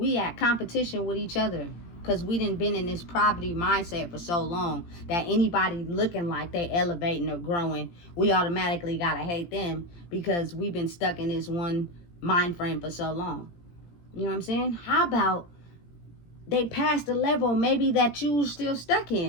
at competition with each other because we done been in this poverty mindset for so long that anybody looking like they elevating or growing, we automatically got to hate them because we've been stuck in this one mind frame for so long. You know what I'm saying? How about they pass the level maybe that you still stuck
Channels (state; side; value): late; right; 17 ms